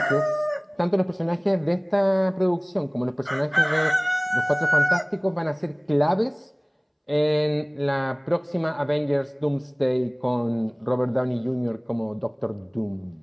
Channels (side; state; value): both; identical; correlation 1.00